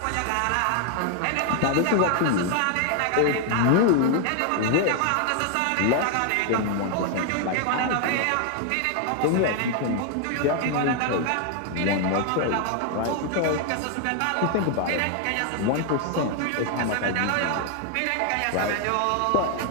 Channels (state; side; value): different; both; correlation 0.00